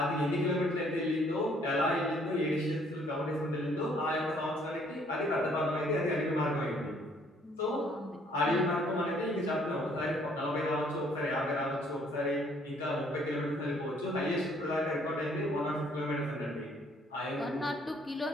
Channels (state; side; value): normal; both; correlation 0.63